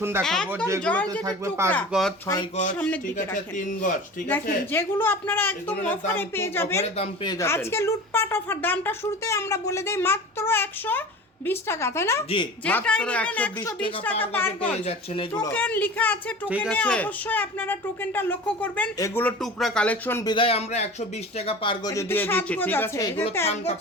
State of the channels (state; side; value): normal; both; correlation 0.36